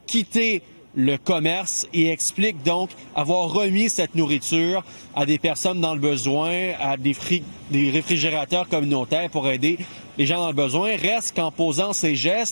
quitté le commerce et explique donc avoir remis cette nourriture à des personnes dans le besoin, à des réfrigérateurs communautaires pour aider les gens dans le besoin. Reste qu'en posant ces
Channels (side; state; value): both; inverted; correlation -1.00